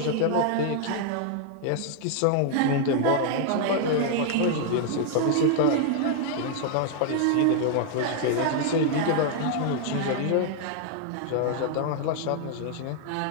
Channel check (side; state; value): both; different; correlation 0.00